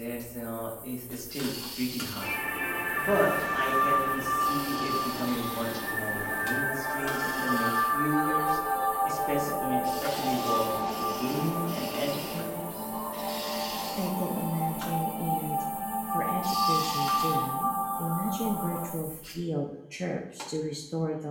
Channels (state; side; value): identical; both; correlation 1.00